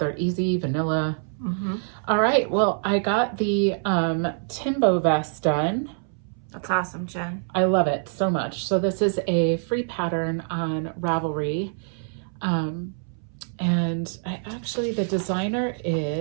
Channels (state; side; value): silent; left; 62 dB below the other